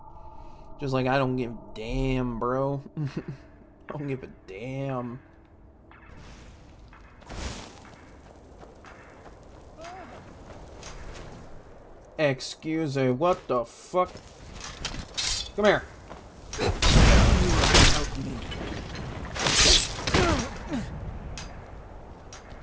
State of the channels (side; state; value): both; identical; correlation 1.00